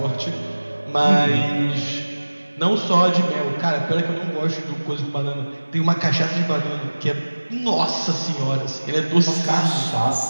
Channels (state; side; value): inverted; both; correlation -1.00